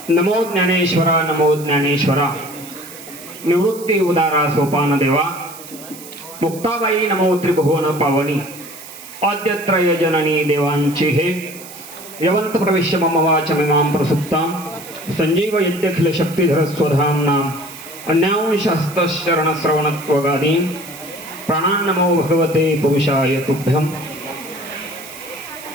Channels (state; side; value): noise; right; hiss, 16 dB below the sound